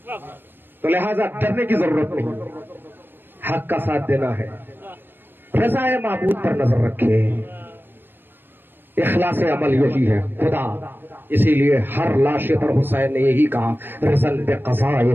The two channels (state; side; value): late; left; 0.099 ms